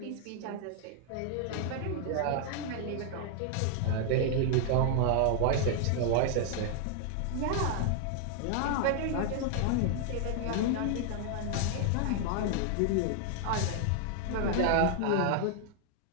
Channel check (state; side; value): different; both; correlation 0.00